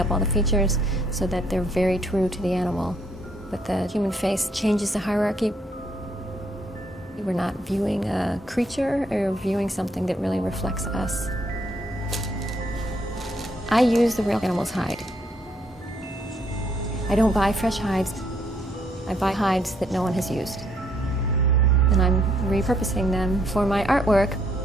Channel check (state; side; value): normal; both; correlation 0.70